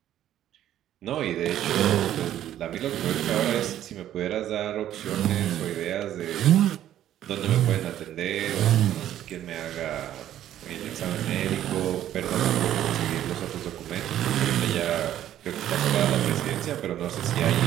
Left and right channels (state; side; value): quieter; left; 11.8 dB